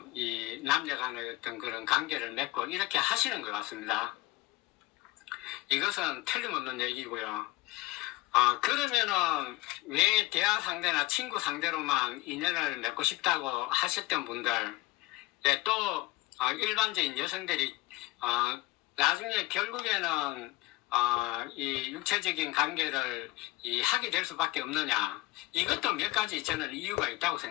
이 남녀 간의 어떤 그런 관계를 맺고 이렇게 하시는 것 같습니다. 이것은 틀림없는 얘기고요. 그러면은 왜 대화 상대나 친구 상대로만 인연을 맺고 싶다고 하셨던 분들, 네, 또 일반적인 여성들이 나중에 결국에는 이 육체적인 관계를 하게 될 수밖에 없느냐? 이것도 몇 가지 저는 이유가 있다고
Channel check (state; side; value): quieter; right; 20.2 dB